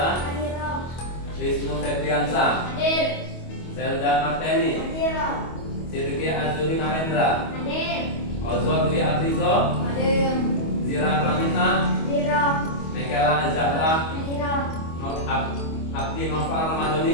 Wisnu Febriansa, Zelda Marteni, Sidki Azuri Narendra, Ozon Dwi Aprizo, Zira Pramita, Mekela Zahra, Abdi Noval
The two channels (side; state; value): right; late; 25 ms